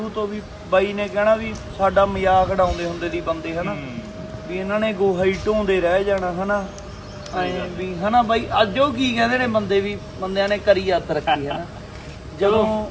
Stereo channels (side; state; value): both; identical; correlation 1.00